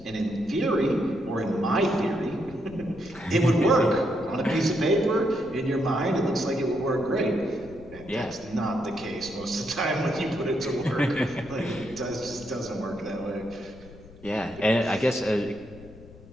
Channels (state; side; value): noise; left; rumble, 19 dB below the sound